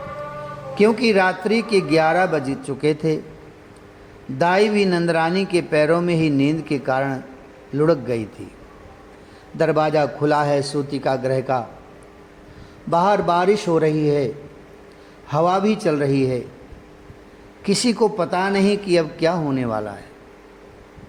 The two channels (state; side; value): identical; both; correlation 1.00